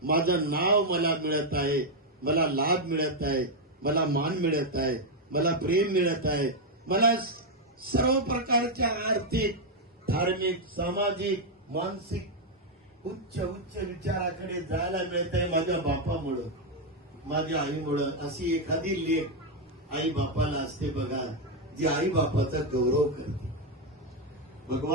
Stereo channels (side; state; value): both; normal; correlation 0.01